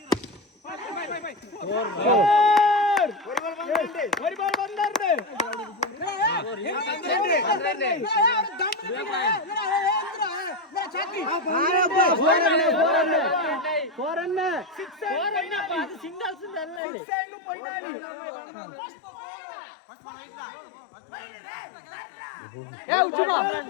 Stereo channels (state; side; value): drops out; right; at 16.8 s